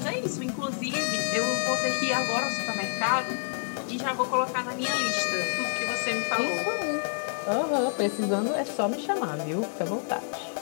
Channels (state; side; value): silent; right; digital silence